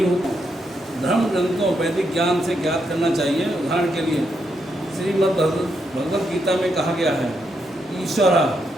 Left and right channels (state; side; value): normal; both; correlation 0.80